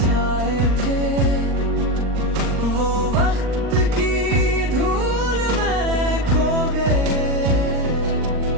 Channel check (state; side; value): late; left; 39 ms